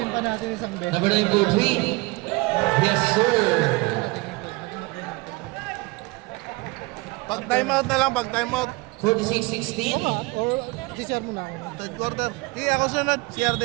pa natin isang bet. Number 9 for 3. Yes, sir. Pag timeout na lang, pag timeout. 46-16. Or si-share mo na. Third quarter. Sige, ako sunod. CR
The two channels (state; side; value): quieter; left; 24.1 dB